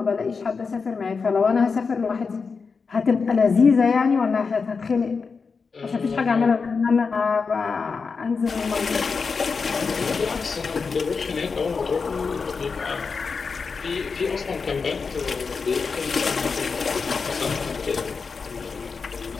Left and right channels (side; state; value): right; quieter; 5.0 dB